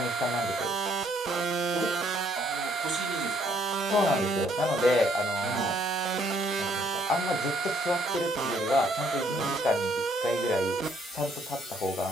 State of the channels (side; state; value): both; normal; correlation 0.67